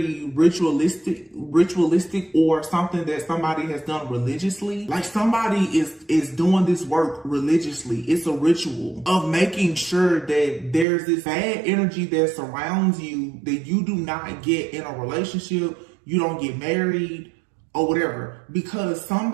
ritualistic or something that somebody has done religiously. Like somebody is doing this work religiously. It's a ritual of making sure that there's this bad energy that surrounds you, that you do not get in a relationship, you don't get married, or whatever, because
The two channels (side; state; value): left; drops out; at 10.9 s